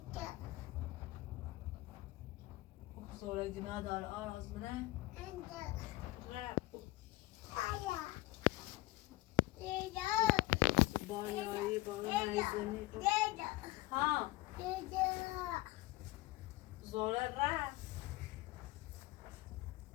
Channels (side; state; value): right; quieter; 19.4 dB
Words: زوره گناه داره آراز منه بایایی نیزنی ها زوره رفت